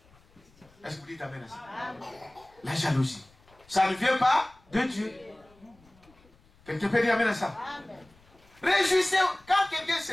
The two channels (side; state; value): left; noise; rumble, 29 dB below the sound